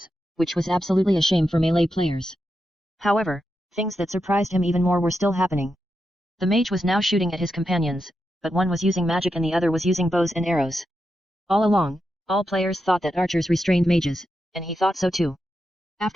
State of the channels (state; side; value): normal; both; correlation 0.87